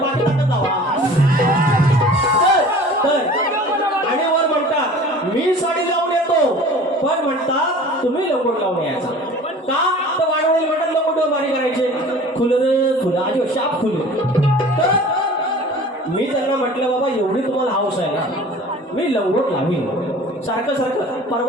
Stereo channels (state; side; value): normal; both; correlation 0.44